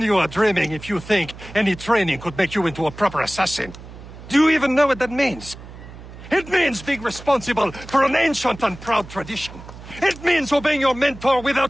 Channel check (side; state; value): right; noise; hum, 16 dB below the sound